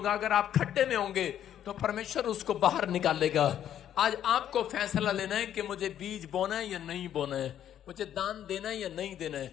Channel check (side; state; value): right; quieter; 10.5 dB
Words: अगर आप खड्डे में होंगे तो परमेश्वर उसको बाहर निकालेगा। आज आपको फैसला लेना है कि मुझे बीज बोना है या नहीं बोना है, मुझे दान देना है या नहीं देना